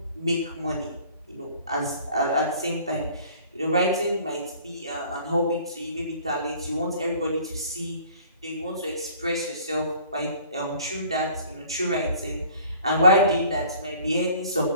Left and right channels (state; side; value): inverted; both; correlation -0.52